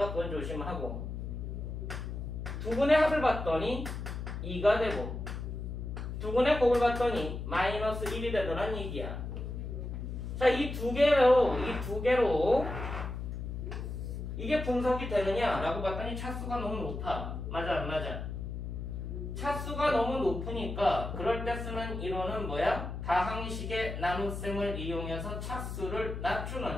그건 조심하고 두 근의 합을 봤더니 2가 되고 두 근의 곱을 봤더니 마이너스 1이 되더란 얘기야. 자, 이 두 개로 이게 분석이 되느냐라고 봤더니 차수가 너무 높아. 맞아, 안 맞아? 차수가 너무 높으니까 그럴 때 쓰는 이론은 뭐야? 다항식의 나눗셈을 이용해서 차수를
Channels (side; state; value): left; noise; hum, 6 dB below the sound